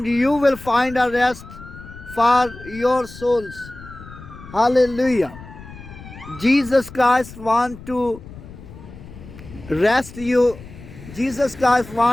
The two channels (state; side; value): noise; left; rumble, 16 dB below the sound